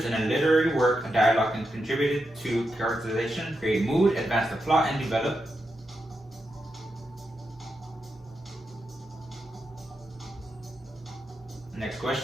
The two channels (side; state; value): both; normal; correlation 0.86